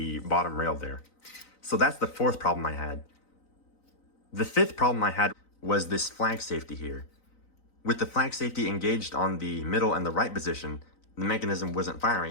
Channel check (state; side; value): late; right; 3.9 ms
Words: bottom rail there. So that's the fourth problem I had. The fifth problem I had was this flag safety here. With the flag safety engaged on the middle and the right position, the mechanism wasn't